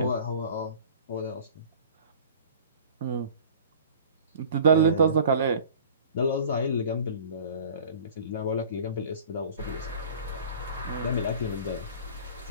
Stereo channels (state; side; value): inverted; both; correlation -0.44